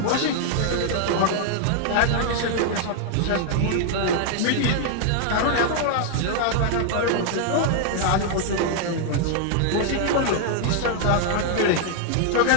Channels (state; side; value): different; both; correlation 0.00